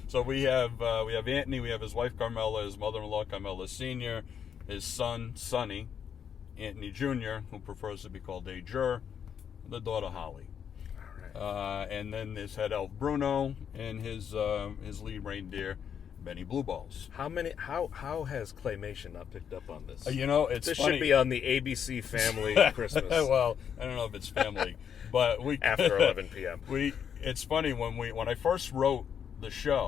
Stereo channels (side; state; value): right; quieter; 8.0 dB